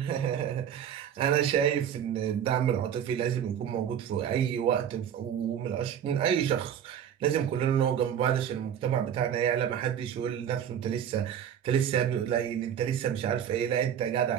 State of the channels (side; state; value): left; quieter; 9.2 dB